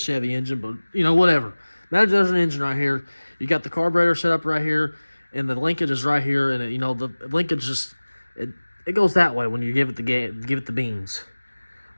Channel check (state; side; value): inverted; both; correlation -1.00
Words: engine, but, you know, whatever. Imagine there's an engine right here. You got the carburetor set up right here, and the linkage is right here, and, the linkage just, it goes that way when you give it the beans.